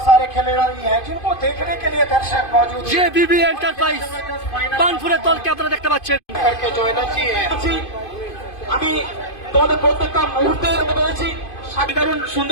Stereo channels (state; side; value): late; right; 2.5 ms